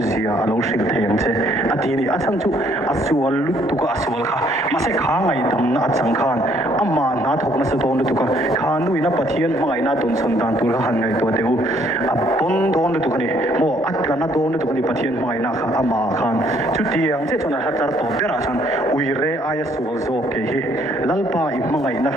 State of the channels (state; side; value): normal; both; correlation 0.65